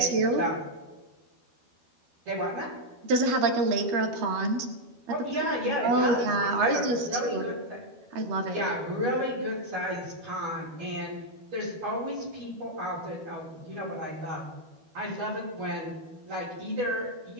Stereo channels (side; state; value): left; late; 12 ms